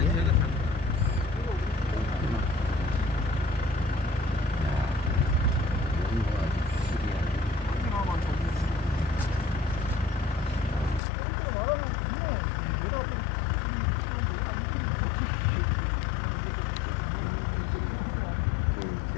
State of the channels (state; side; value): drops out; right; at 11.0 s